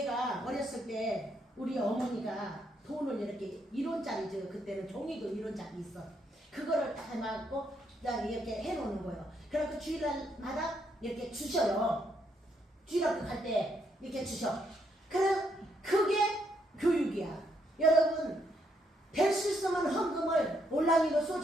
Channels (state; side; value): normal; both; correlation 0.75